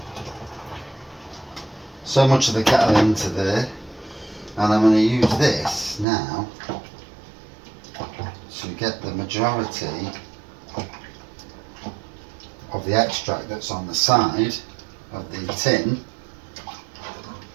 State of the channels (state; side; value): drops out; left; at 6.1 s